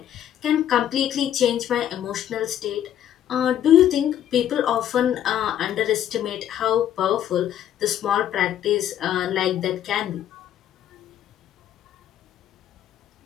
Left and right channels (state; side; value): quieter; right; 10.8 dB